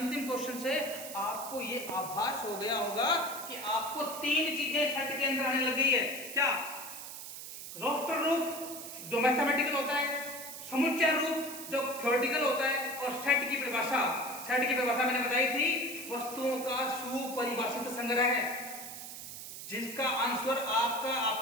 क्वेश्चन से आपको ये आभास हो गया होगा कि आपको 3 चीजें सेट के अंदर आने लगी है। क्या? रोस्टर रूप जो मैथमेटिकल होता है, समुच्चय रूप जो थ्योरेटिकल होता है, और सेट की परिभाषा। सेट की परिभाषा मैंने बताई थी, वस्तुओं का सुपरिभाषित संग्रह है जिसका आंसर आपका,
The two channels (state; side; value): noise; right; hiss, 10 dB below the sound